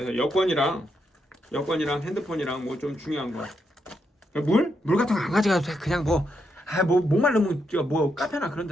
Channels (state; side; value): normal; both; correlation 0.81